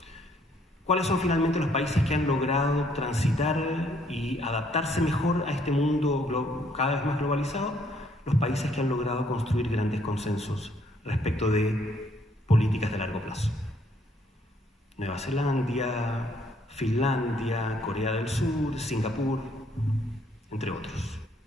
¿cuáles son finalmente los países que han logrado transitar y adaptarse mejor a este mundo cada vez más globalizado? Los países que han logrado construir grandes consensos respecto de políticas de largo plazo. Nueva Zelanda, Finlandia, Corea del Sur, Singapur, entre otros.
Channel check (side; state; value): both; normal; correlation 0.67